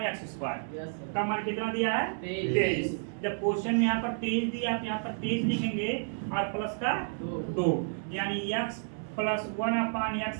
का मान कितना दिया है? 23। जब क्वेश्चन में यहाँ पर 23 दिया तो यहाँ पर 23 लिखेंगे और प्लस का 2, यानी x + 1/(x)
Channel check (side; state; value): left; silent; 57 dB below the other